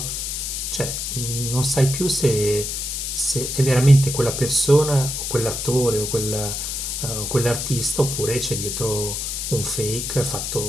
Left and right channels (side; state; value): left; noise; hiss, 3 dB below the sound